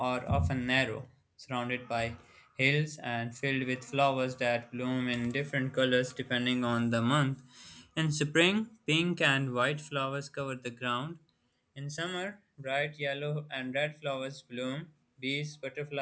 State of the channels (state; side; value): identical; both; correlation 1.00